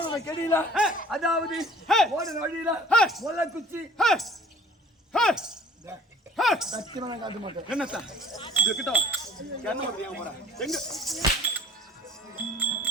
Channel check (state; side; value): normal; both; correlation 0.50